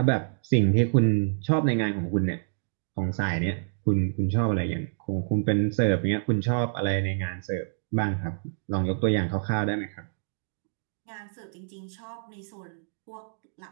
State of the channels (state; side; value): silent; left; digital silence